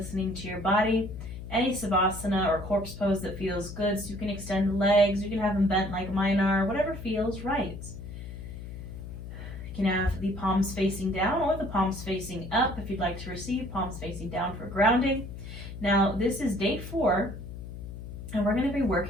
to your body. Any Savasana or corpse pose that feels good, so you can extend the legs, you can have them bent like mine are, whatever feels right. You can have the palms facing down or the palms facing up if you'd like to receive, palms facing down for grounding. Now, this is day 4, and we're going to be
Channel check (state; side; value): noise; left; hum, 10 dB below the sound